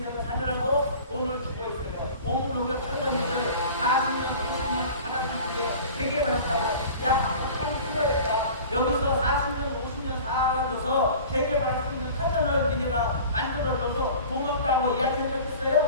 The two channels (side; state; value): both; inverted; correlation -0.41